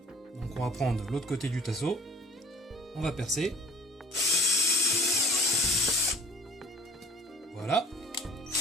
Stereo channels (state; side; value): normal; both; correlation 0.51